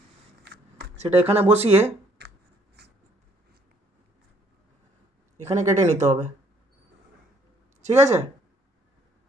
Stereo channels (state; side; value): normal; both; correlation 0.64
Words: বসিয়ে এখানে কেটে নিতে হবে। ঠিক আছে,